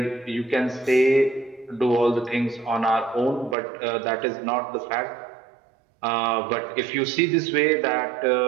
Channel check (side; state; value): left; drops out; at 3.6 s